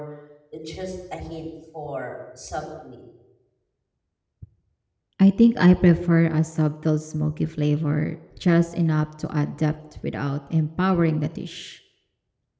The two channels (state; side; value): identical; both; correlation 1.00